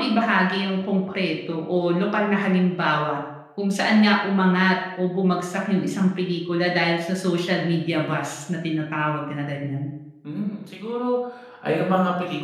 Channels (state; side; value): identical; both; correlation 1.00